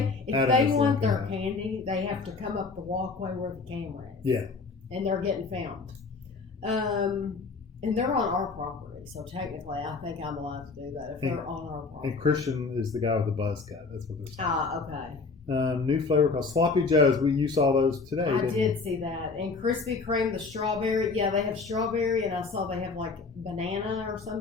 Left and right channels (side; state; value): right; quieter; 4.3 dB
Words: if they want their candy, they have to come up the walkway where the camera is. Yeah. And they're getting filmed. And they're on our property, so technically I think I'm allowed to do that if they're on our property. And Christian is the guy with the buzz cut. That's what they're saying. Okay. New flavor called Sloppy Joe's. You saw those today, I didn't did you? see that. And Krispy Kreme, the strawberry. Yeah, they have strawberry, and I saw they have like banana or